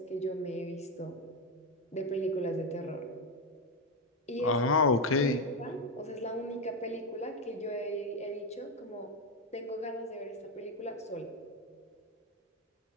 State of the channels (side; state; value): both; normal; correlation 0.08